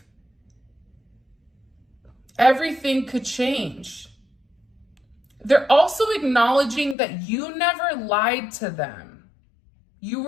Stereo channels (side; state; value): right; drops out; at 7.0 s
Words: everything could change. They're also acknowledging that you never lied to them. You